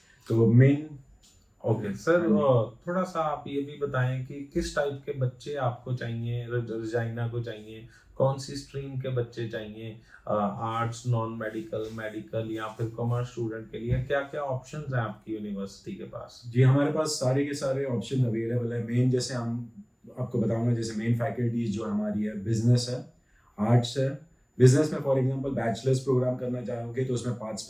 तो मेन ओके सर, थोड़ा सा आप ये भी बताएं कि किस टाइप के बच्चे आपको चाहिए, रजाइना को चाहिए, कौन सी स्ट्रीम के बच्चे चाहिए, आर्ट्स, नॉन मेडिकल, मेडिकल या फिर कॉमर्स स्टूडेंट के लिए क्या क्या ऑप्शंस हैं आपकी यूनिवर्सिटी के पास। जी, हमारे पास सारे के सारे ऑप्शन अवेलेबल है। मेन जैसे हम आपको बताऊंगा, जैसे मेन फैकल्टीज जो हमारी है, बिजनेस है, आर्ट्स है। बिजनेस में फॉर एग्जांपल बैचलर्स प्रोग्राम करना चाहोगे तो उसमें 5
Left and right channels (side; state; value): both; identical; correlation 1.00